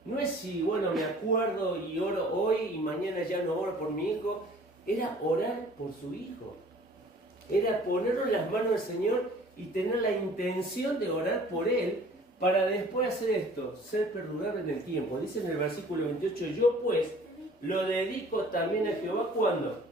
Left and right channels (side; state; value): both; normal; correlation 0.51